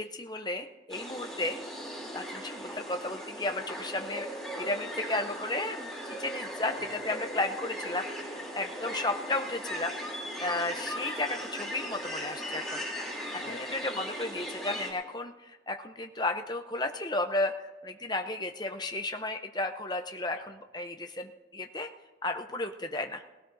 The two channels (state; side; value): normal; both; correlation 0.18